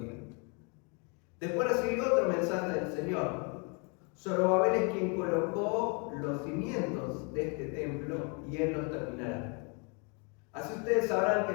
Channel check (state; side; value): quieter; right; 34.8 dB